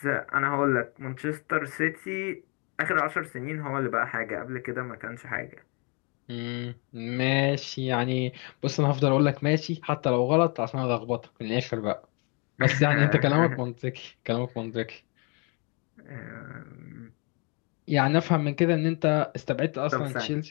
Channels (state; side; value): quieter; right; 33.2 dB